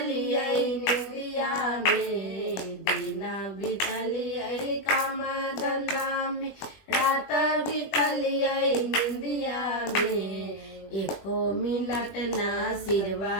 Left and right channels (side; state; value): right; late; 20 ms